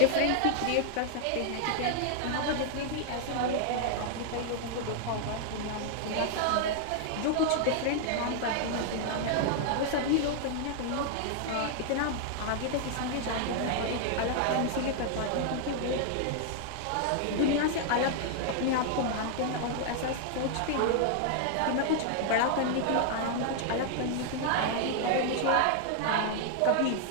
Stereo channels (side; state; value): both; different; correlation 0.00